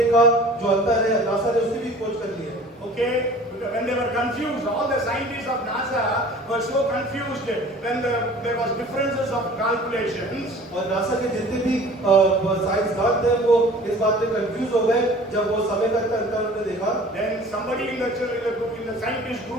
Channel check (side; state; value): both; normal; correlation 0.46